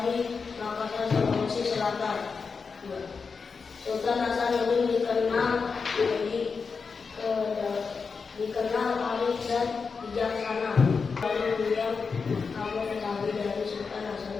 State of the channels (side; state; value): right; quieter; 5.2 dB